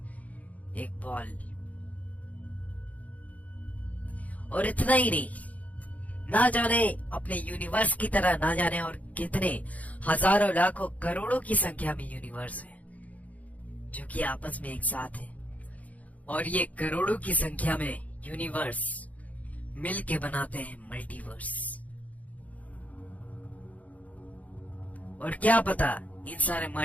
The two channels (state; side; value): late; right; 0.072 ms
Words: एक बॉल। और इतना ही नहीं, ना जाने अपने यूनिवर्स की तरह ना जाने और कितने हजारों लाखों करोड़ों की संख्या में यूनिवर्स है जो कि आपस में एक साथ है। और ये करोड़ों की संख्या में यूनिवर्स मिलके बनाते हैं मल्टीवर्स। और क्या पता इन सारे